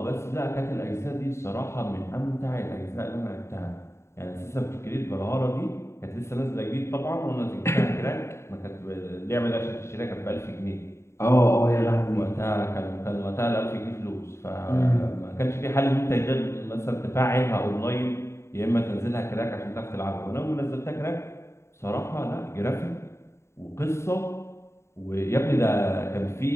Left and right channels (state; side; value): late; right; 0.13 ms